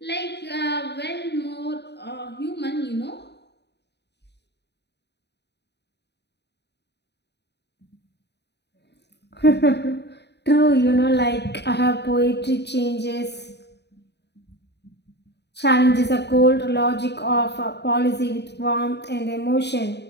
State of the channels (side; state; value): right; late; 0.49 ms